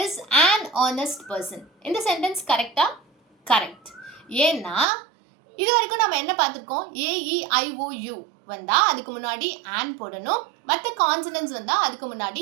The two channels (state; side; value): drops out; left; at 4.9 s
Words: is an honest person. இந்த சென்டென்ஸ் கரெக்டா? கரெக்ட். ஏன்னா இது வரைக்கும் நம்ம என்ன பார்த்துருக்கோம்? ஏஇஐஓயு வந்தால் அதுக்கு முன்னாடி ஆன் போடணும், மற்ற கான்சனன்ஸ் வந்தால் அதுக்கு